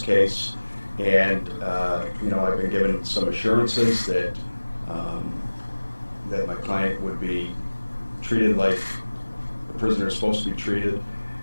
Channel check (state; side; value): inverted; both; correlation -1.00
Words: and you know, I've been given some assurances that that my client would be treated like the prisoner is supposed to be treated,